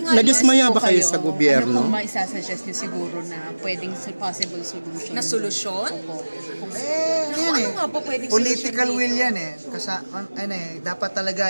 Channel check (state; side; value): inverted; both; correlation -1.00